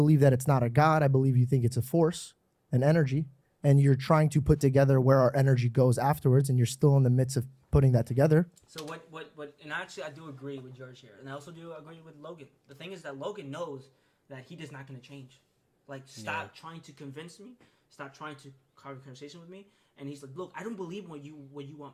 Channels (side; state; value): both; identical; correlation 1.00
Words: that it's not a god. I believe you think it's a force, an energy, and you're trying to put together where our energy goes afterwards, and you're still in the midst of putting that together. So what, and actually I do agree with George here. And I also do agree with Logan. The thing is that Logan knows that he is not going to change. Like, stop trying to convince me. Stop trying to have a conversation with me. And he's like, look, I don't believe what you